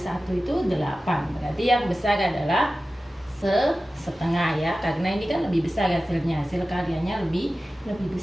itu 8. Berarti yang besar adalah setengah ya, karena ini kan lebih besar hasilnya, hasil karyanya lebih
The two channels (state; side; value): normal; both; correlation 0.95